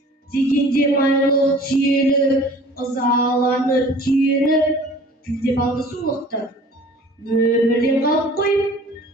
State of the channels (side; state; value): both; normal; correlation 0.47